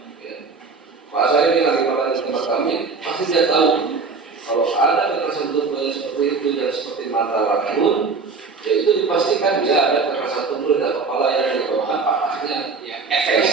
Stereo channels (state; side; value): quieter; left; 4.5 dB